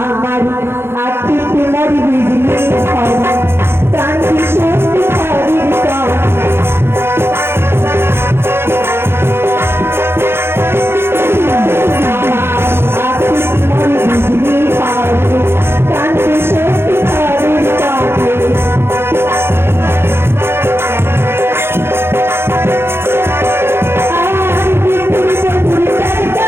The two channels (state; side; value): late; left; 0.11 ms